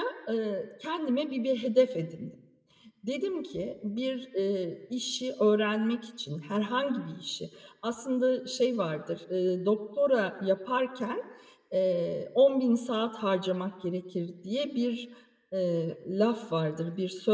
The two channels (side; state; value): both; identical; correlation 1.00